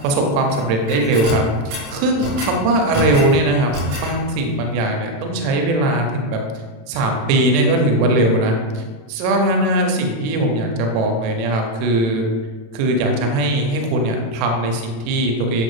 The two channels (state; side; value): late; left; 36 ms